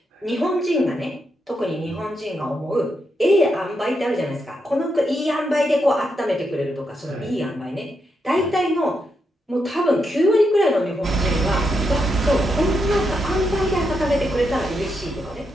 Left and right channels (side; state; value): both; normal; correlation 0.82